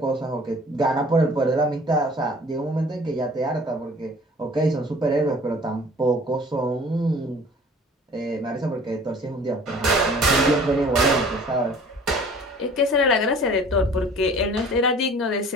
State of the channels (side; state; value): both; normal; correlation 0.49